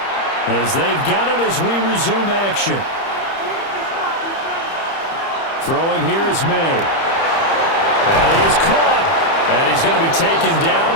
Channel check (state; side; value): late; right; 30 ms